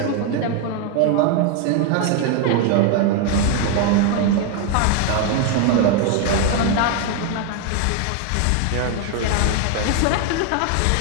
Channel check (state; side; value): different; both; correlation 0.01